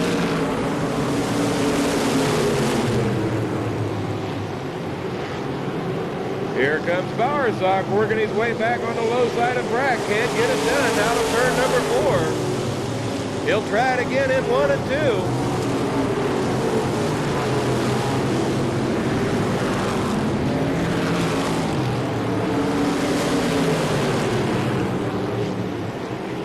Here comes Bowersock working his way back on the low side of Brack. Can't get it done out of turn number 4. He'll try it again in 1 and 2.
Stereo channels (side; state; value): both; identical; correlation 1.00